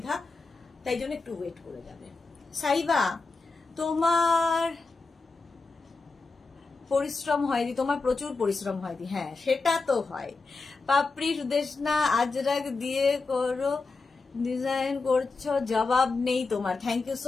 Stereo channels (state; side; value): quieter; right; 3.9 dB